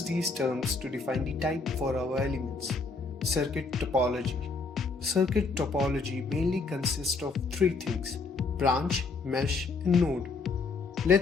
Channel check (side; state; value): right; quieter; 4.1 dB